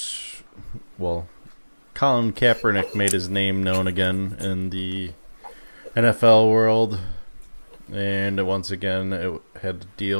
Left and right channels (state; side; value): inverted; both; correlation -1.00